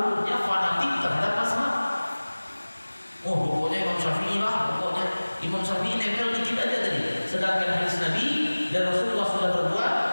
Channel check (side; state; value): both; inverted; correlation -1.00